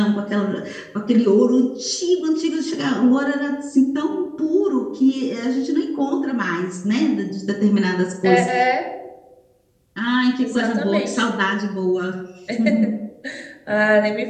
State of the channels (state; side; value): identical; both; correlation 1.00